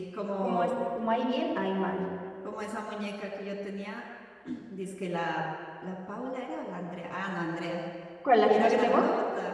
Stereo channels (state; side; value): identical; both; correlation 1.00